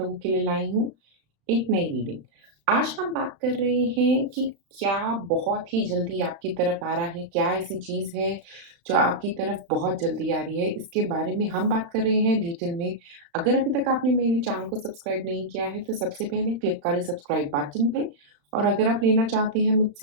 के लिए लाई हूँ एक नई रीडिंग। आज हम बात कर रहे हैं कि क्या बहुत ही जल्दी आपकी तरफ आ रहा है, क्या ऐसी चीज़ है जो आपकी तरफ बहुत जल्दी आ रही है, इसके बारे में हम बात कर रहे हैं डिटेल में। अगर अभी तक आपने मेरे चैनल को सब्सक्राइब नहीं किया है, तो सबसे पहले क्लिक करें सब्सक्राइब बटन पे और अगर आप लेना चाहते हैं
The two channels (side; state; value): left; late; 35 ms